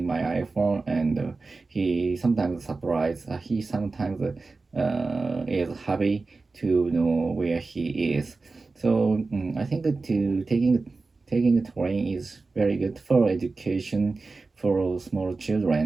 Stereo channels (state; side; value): quieter; left; 3.8 dB